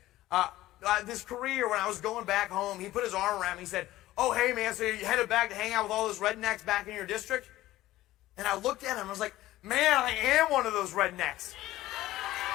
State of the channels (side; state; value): right; quieter; 15.9 dB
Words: This career, when I was going back home, he put his arm around me. He said, oh, hey, man, so you headed back to hang out with all those rednecks back in your district? And I looked at him and I was like, man, I am one of those rednecks.